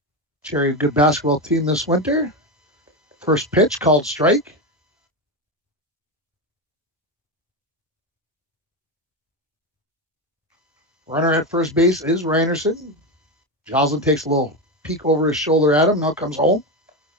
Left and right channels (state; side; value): normal; both; correlation 0.14